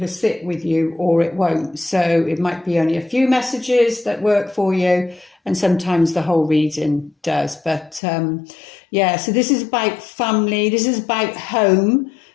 sit with you or it won't. So it might be only a few messages that work for you, and sometimes the whole reading does. But yeah, so this is about family, this is about home.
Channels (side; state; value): right; drops out; at 8.0 s